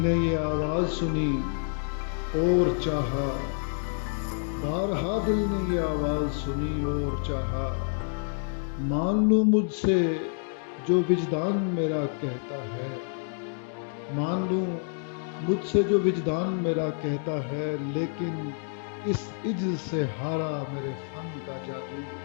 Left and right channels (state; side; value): silent; right; 59 dB below the other